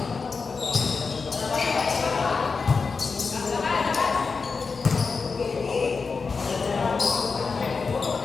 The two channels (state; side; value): quieter; right; 4.8 dB